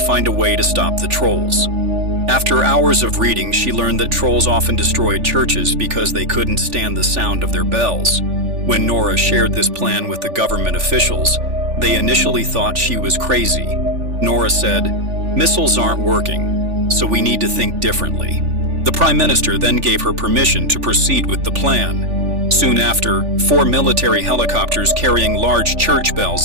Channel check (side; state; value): left; late; 3.4 ms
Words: a way to stop the trolls. After hours of reading, she learned that trolls often destroyed churches because they couldn't stand the sound of their bells. When Nora shared this plan with the government officials, they initially thought she was crazy. Nora said, "Missiles aren't working, so we need to think differently." The Prime Minister then gave her permission to proceed with the plan. Soon after, 4 military helicopters carrying large church bells